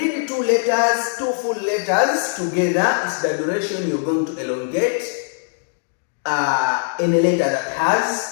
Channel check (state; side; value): silent; right; digital silence